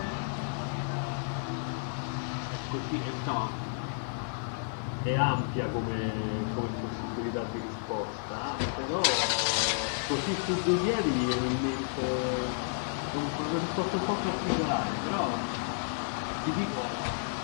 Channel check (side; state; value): right; silent; 57 dB below the other